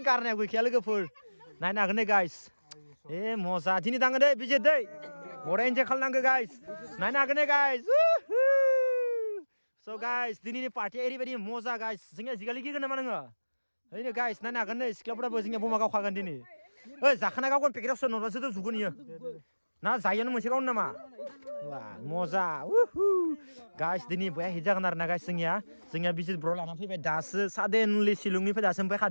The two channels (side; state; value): both; inverted; correlation -1.00